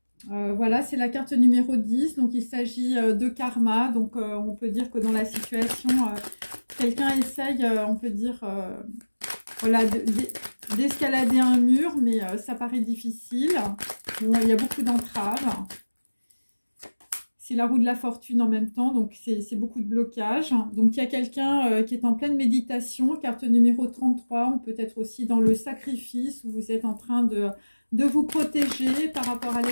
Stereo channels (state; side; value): inverted; both; correlation -1.00